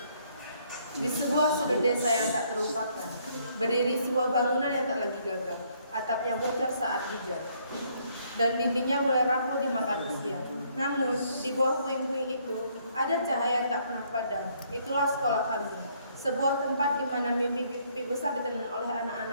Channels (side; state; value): both; inverted; correlation -0.67